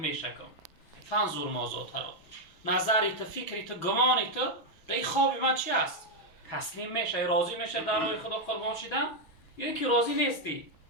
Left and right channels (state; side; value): late; right; 6.2 ms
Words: فانظر ماذا تری نظری تو فکری تو گمانی تو در این خواب من چی است؟ تسلیم میشه راضی میشه در راه خدا قربان شدن یا اینکه راضی نیستی؟